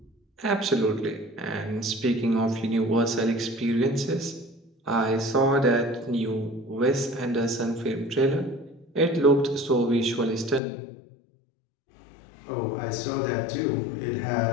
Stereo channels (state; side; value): drops out; right; at 10.6 s